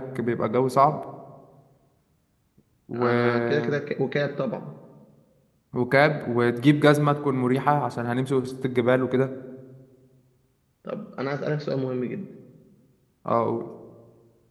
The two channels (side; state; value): both; identical; correlation 1.00